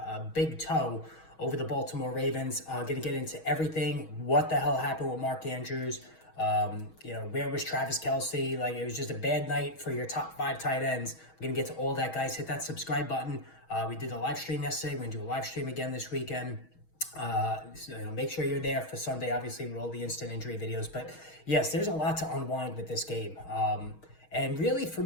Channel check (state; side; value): late; right; 6.3 ms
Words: big toe over the Baltimore Ravens. Going to get into everything. What the hell happened with Mark Andrews? Where was Travis Kelce? Like, it was just a bad night for your top 5 tight ends. We're going to get to all that, guys. Hit that subscribe button. We did a live stream yesterday. We're going to do a live stream again this weekend. Make sure you're there for Sunday, obviously, with all the instant injury videos. But yes, there's a lot to unwind with this game. And really, for